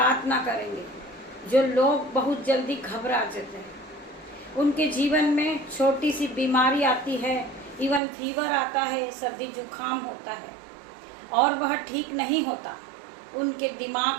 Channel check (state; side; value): drops out; left; at 8.0 s